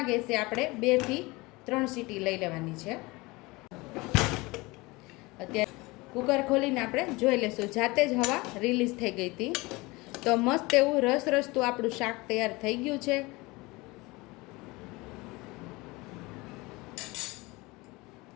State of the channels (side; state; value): right; quieter; 23.1 dB